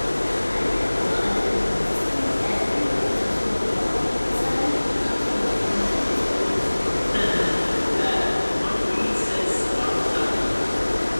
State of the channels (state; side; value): inverted; both; correlation -1.00